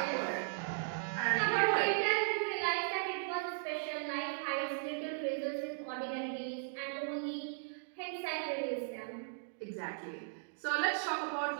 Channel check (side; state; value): left; silent; digital silence